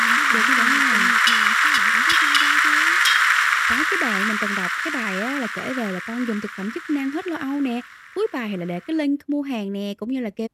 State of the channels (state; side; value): identical; both; correlation 1.00